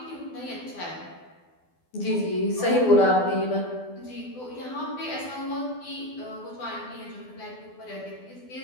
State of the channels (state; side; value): late; right; 12 ms